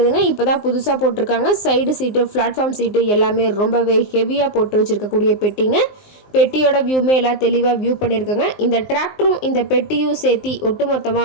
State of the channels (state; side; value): late; right; 19 ms